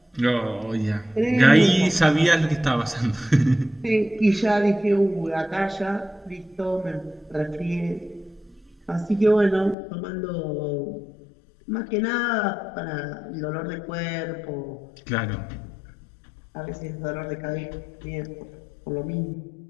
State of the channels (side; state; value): right; drops out; at 9.8 s